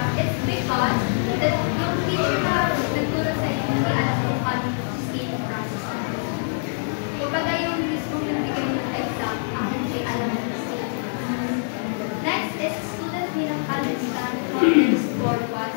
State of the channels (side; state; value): right; silent; 58 dB below the other